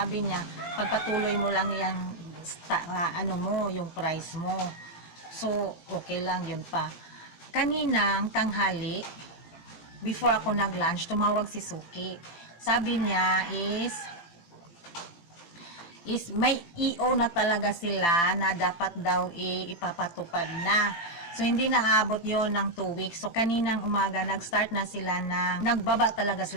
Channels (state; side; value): late; right; 18 ms